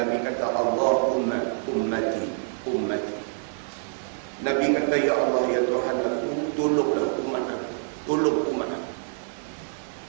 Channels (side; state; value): left; silent; 61 dB below the other